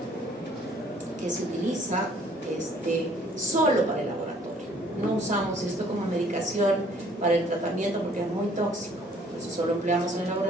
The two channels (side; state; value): both; normal; correlation 0.58